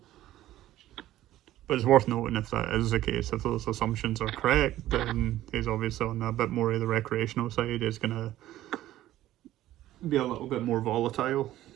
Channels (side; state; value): left; quieter; 14.2 dB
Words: But it's worth noting if that is the case, if those assumptions are correct, then he's obviously on a bit more of the recreational side. He's going to be a little bit more volatile